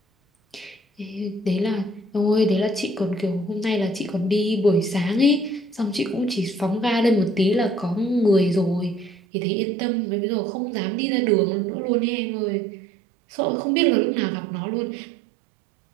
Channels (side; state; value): left; drops out; at 9.2 s